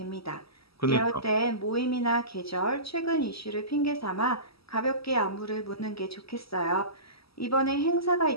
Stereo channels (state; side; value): late; right; 0.76 ms